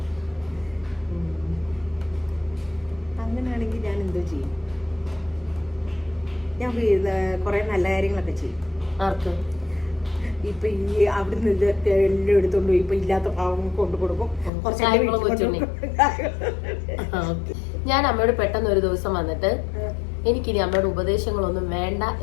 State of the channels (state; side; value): drops out; right; at 14.5 s